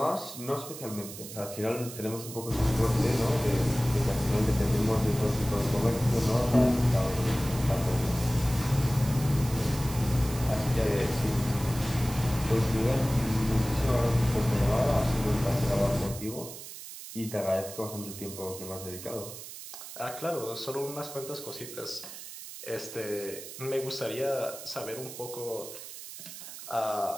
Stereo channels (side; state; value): right; noise; hiss, 12 dB below the sound